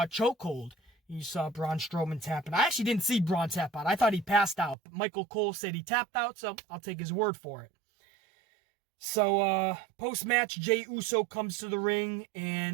a chokehold. You saw Braun Strowman tapping. I actually didn't see Braun tap out. I thought he passed out. But Michael Cole said he tapped out, so I'll take his word for it. So, post-match, Jey Uso comes to the ring,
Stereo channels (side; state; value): left; drops out; at 4.8 s